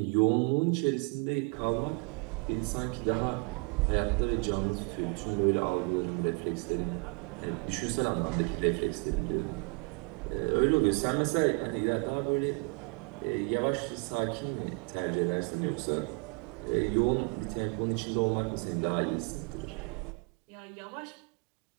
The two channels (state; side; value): quieter; left; 34.1 dB